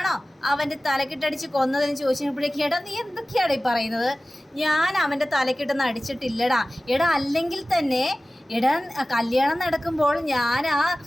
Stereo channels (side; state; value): both; normal; correlation 0.97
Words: അവൻ്റെ തലക്കിട്ടടിച്ച് കൊന്നതെന്ന് ചോദിച്ചപ്പോഴേക്കും എടാ നീ എന്തൊക്കെയാണ് ഈ പറയുന്നത്? ഞാൻ അവൻ്റെ തലക്കിട്ടൊന്നും അടിച്ചിട്ടില്ലടാ. എടാ അല്ലെങ്കിൽ തന്നെ എടാ കല്യാണം നടക്കുമ്പോൾ ഞാൻ ആ